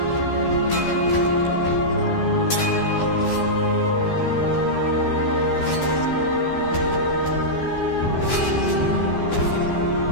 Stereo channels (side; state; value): right; late; 12 ms